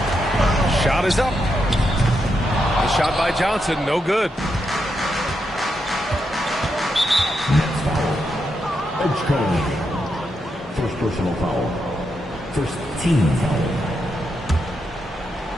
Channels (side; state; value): both; normal; correlation 0.83